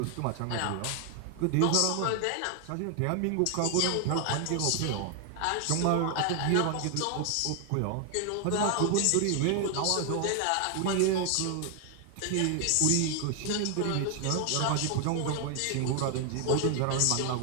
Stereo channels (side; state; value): both; different; correlation 0.00